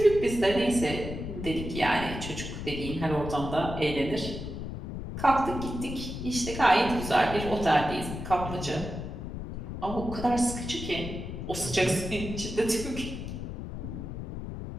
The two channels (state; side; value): noise; left; rumble, 7 dB below the sound